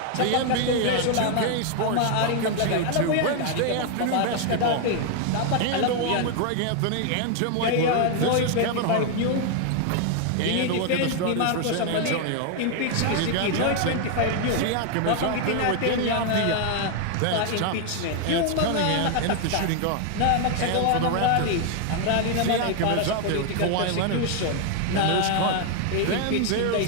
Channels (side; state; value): both; different; correlation 0.00